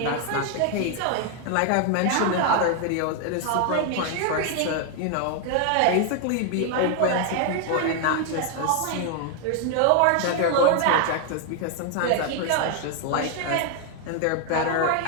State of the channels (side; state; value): both; different; correlation 0.00